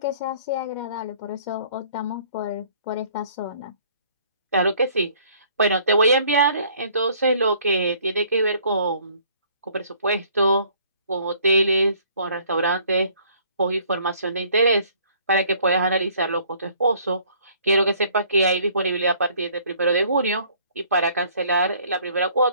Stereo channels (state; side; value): inverted; both; correlation -0.59